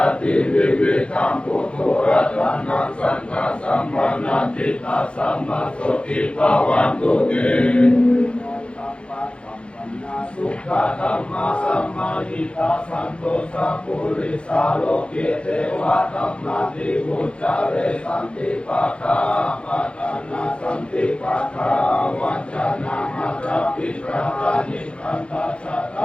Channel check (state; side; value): late; right; 0.058 ms